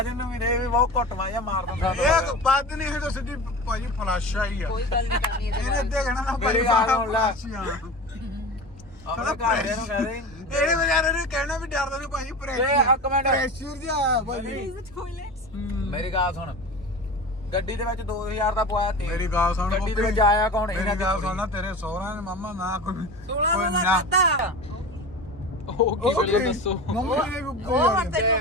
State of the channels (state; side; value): normal; both; correlation 0.31